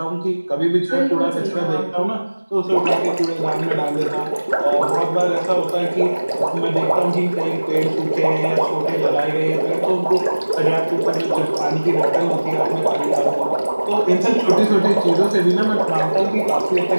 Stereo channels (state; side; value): inverted; both; correlation -1.00